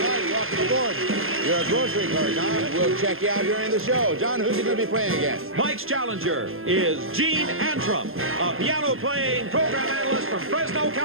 right, welcome aboard. You're a grocery clerk, huh? We'll check you out during the show. John, who's he going to be playing against? Mike's challenger is Gene Antrim, a piano-playing program analyst from Fresno,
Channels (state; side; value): late; left; 0.60 ms